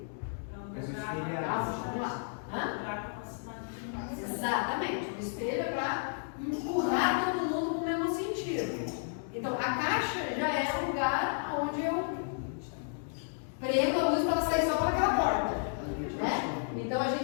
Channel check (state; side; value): silent; right; digital silence